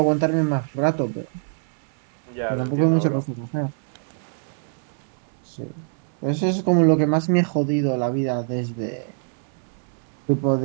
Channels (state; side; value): silent; left; digital silence